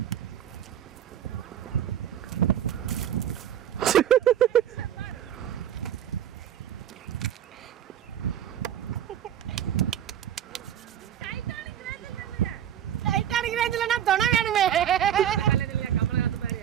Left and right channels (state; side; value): quieter; left; 10.2 dB